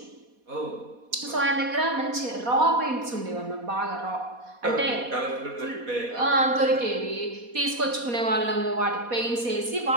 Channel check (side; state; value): left; late; 4.2 ms